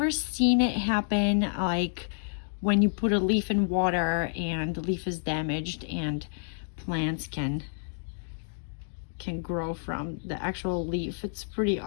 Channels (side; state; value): right; silent; digital silence